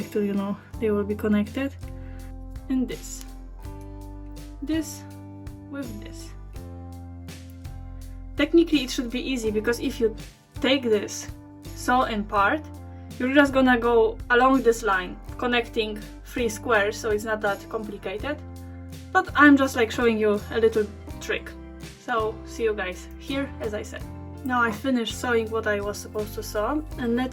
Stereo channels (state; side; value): identical; both; correlation 1.00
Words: to, you know, they will be connected. And this with this. Technically it should be easy because if you take this sew in part, you're just gonna go along this line connecting 3 squares, so it's not that complicated, but I'm just like showing you a little trick. So see you guys here, as I said. Now I finished sewing what I was supposed to sew, and